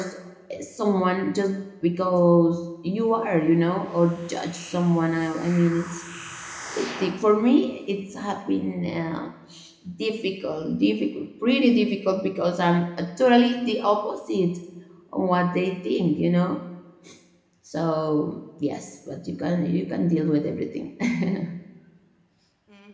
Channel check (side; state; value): both; identical; correlation 1.00